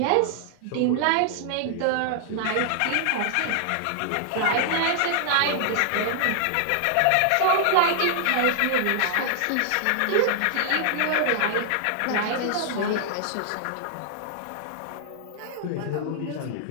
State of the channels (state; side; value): different; both; correlation -0.01